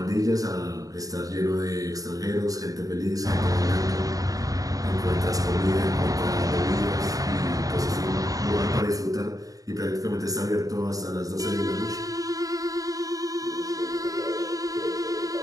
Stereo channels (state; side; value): late; left; 0.17 ms